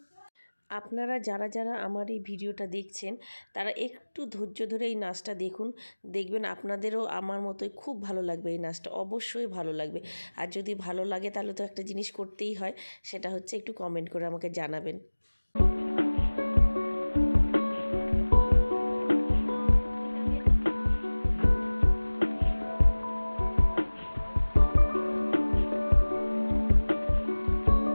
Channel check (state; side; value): inverted; both; correlation -1.00